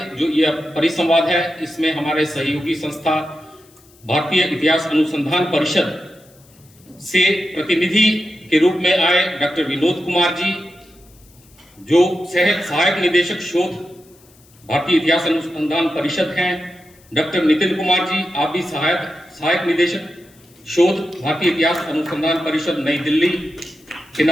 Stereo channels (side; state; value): left; noise; hiss, 29 dB below the sound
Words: जो यह परिसंवाद है, इसमें हमारे सहयोगी संस्था भारतीय इतिहास अनुसंधान परिषद से प्रतिनिधि के रूप में आए डॉक्टर विनोद कुमार जी, जो सहायक निदेशक शोध भारतीय इतिहास अनुसंधान परिषद हैं। डॉक्टर नितिन कुमार जी, आप भी सहायक निदेशक शोध भारतीय इतिहास अनुसंधान परिषद नई दिल्ली के